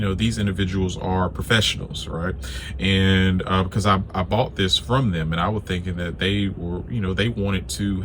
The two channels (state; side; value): identical; both; correlation 1.00